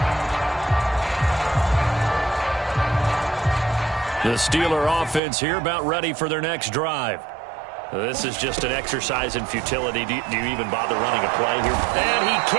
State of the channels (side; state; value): left; drops out; at 5.2 s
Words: The Steeler offense here about ready for their next drive. This is just an exercise in futility. Do you even bother running a play here? And he